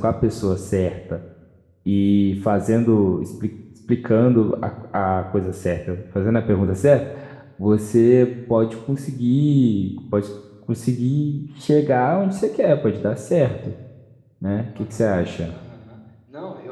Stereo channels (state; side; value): identical; both; correlation 1.00